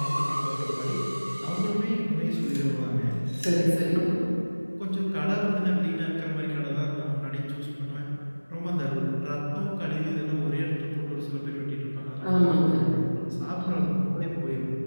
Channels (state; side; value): inverted; both; correlation -1.00